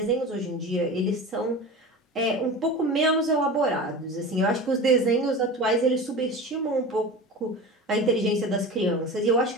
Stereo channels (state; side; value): normal; both; correlation 0.31